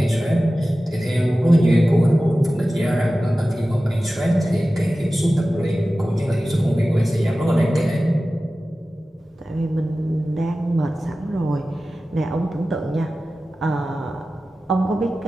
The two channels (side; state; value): both; normal; correlation 0.95